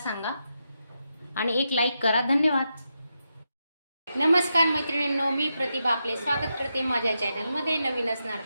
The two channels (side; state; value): both; inverted; correlation -0.86